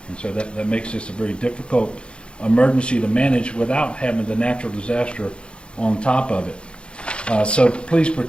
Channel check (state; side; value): late; right; 0.056 ms